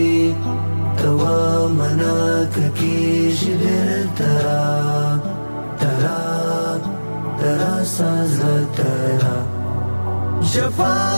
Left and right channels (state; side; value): inverted; both; correlation -1.00